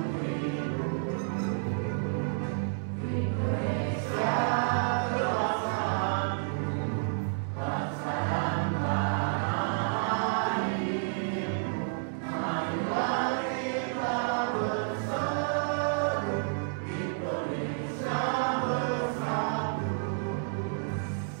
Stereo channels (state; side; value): silent; left; 58 dB below the other